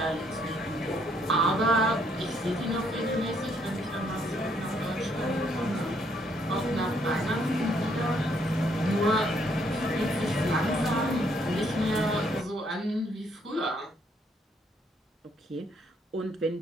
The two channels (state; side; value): normal; both; correlation 0.70